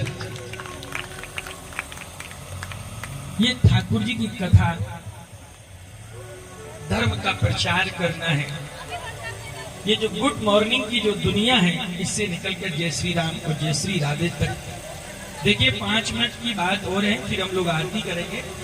ये ठाकुर जी की कथा धर्म का प्रचार करना है। ये जो गुड मॉर्निंग की जो दुनिया है, इससे निकलकर जय श्री राम और जय श्री राधे तक। देखिए 5 मिनट की बात और है, फिर हम लोग आरती करेंगे।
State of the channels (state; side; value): identical; both; correlation 1.00